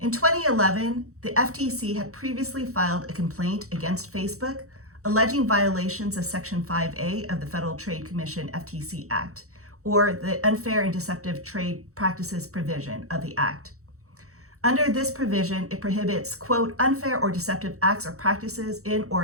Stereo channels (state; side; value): late; left; 0.64 ms